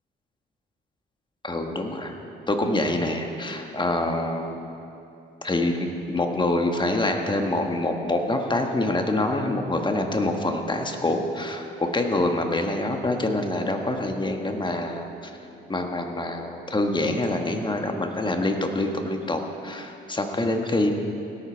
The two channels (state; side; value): normal; both; correlation 0.60